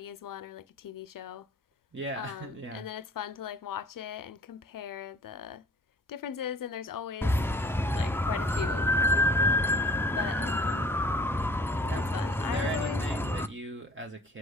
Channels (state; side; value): normal; both; correlation 0.52